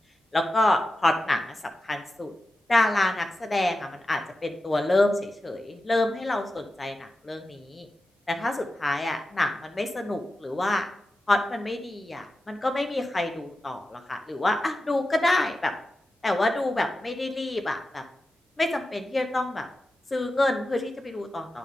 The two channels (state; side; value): normal; both; correlation 0.92